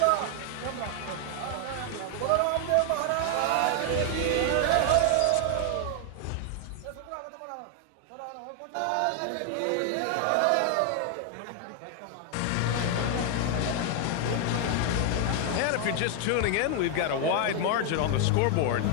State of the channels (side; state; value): both; different; correlation 0.00